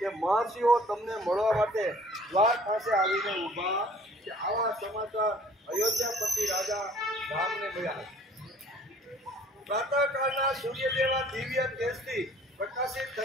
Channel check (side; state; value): both; normal; correlation 0.54